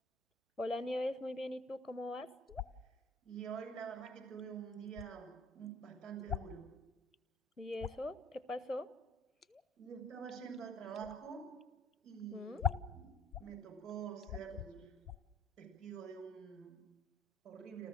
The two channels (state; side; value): normal; both; correlation 0.56